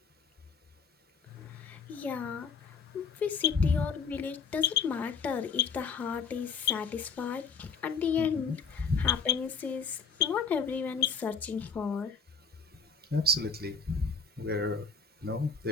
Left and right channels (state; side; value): quieter; right; 5.2 dB